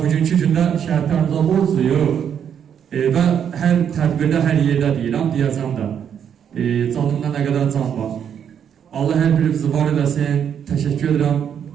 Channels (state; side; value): quieter; left; 8.4 dB